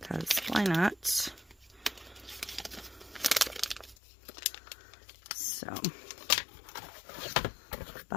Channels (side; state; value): right; drops out; at 4.0 s